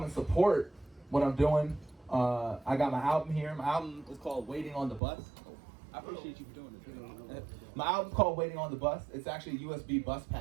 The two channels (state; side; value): drops out; left; at 5.0 s